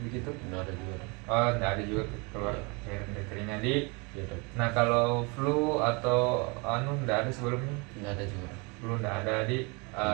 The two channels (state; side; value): quieter; left; 29.8 dB